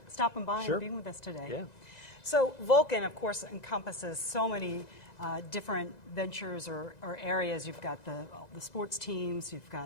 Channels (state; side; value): late; right; 2.0 ms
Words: stopping by and being with us today. Yeah. So Vulcan, of course, encompasses so many different ventures or areas. You've got the sports teams, you've